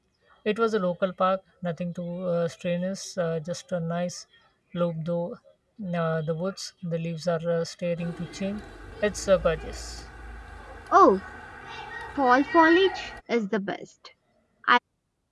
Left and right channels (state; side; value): identical; both; correlation 1.00